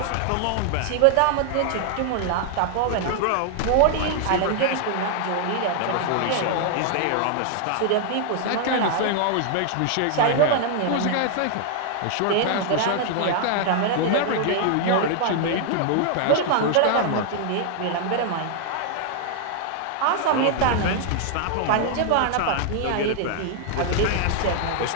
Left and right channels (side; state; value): both; different; correlation 0.00